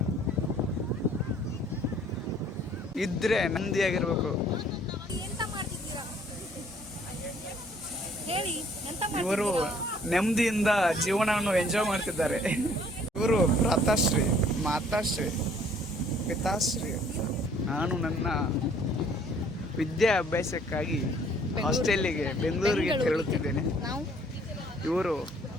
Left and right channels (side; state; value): both; normal; correlation 0.59